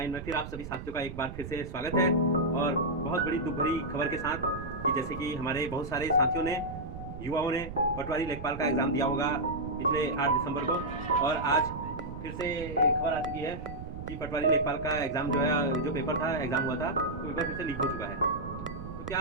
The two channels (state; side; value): noise; right; rumble, 9 dB below the sound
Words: में फिर आप सभी साथियों का एक बार फिर से स्वागत है। और बहुत बड़ी दुख भरी खबर के साथ कि जैसे कि हमारे बहुत सारे साथियों ने, युवाओं ने पटवारी लेखपाल का एग्ज़ाम दिया होगा पिछले 8 दिसंबर को, और आज फिर से खबर आ चुकी है कि पटवारी लेखपाल का एग्ज़ाम जो है, जो पेपर था, एग्ज़ाम हुआ था, तो पेपर फिर से लीक हो चुका है। तो